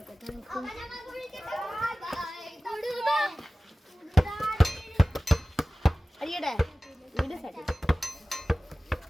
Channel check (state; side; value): normal; both; correlation 0.97